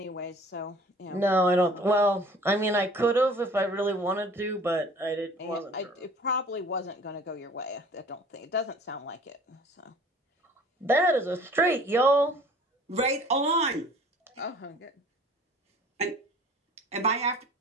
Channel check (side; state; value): both; normal; correlation 0.49